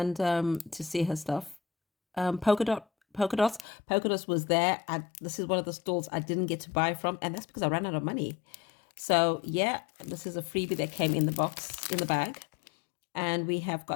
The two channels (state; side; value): drops out; right; at 3.7 s